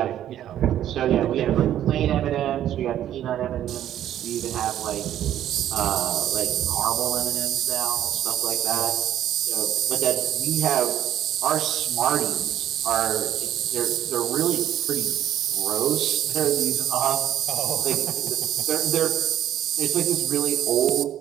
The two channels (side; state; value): left; quieter; 11.5 dB